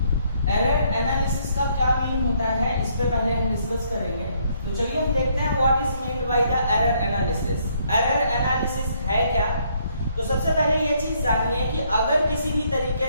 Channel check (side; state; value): both; inverted; correlation -0.69